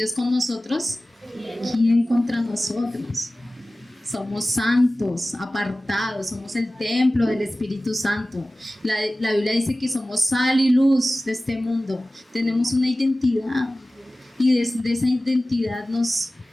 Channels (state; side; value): normal; both; correlation 0.97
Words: con nosotros, ¿quién contra nosotros? Somos santos, apartados, somos el templo del Espíritu Santo. La Biblia dice que somos sal y luz de este mundo. Tenemos una identidad y desde esa identidad nos